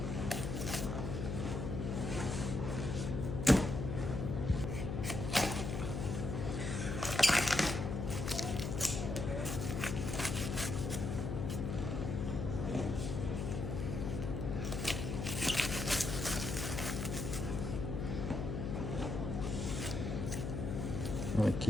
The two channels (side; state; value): left; noise; hum, 2 dB below the sound